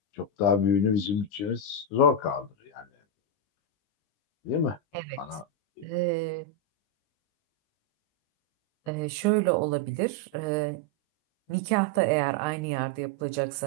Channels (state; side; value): late; right; 20 ms